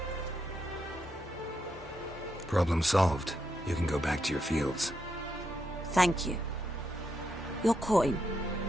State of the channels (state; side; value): normal; both; correlation 0.81